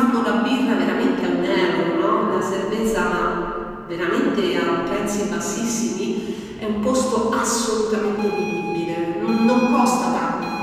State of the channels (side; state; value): both; identical; correlation 1.00